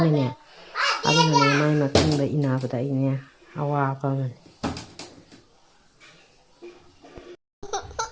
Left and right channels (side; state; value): both; identical; correlation 1.00